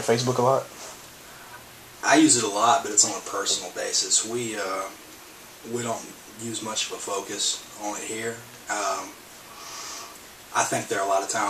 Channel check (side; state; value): both; identical; correlation 1.00